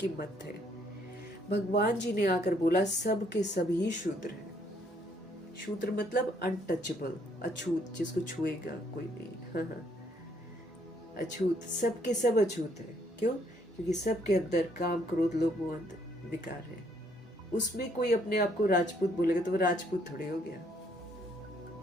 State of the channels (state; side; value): normal; both; correlation 0.68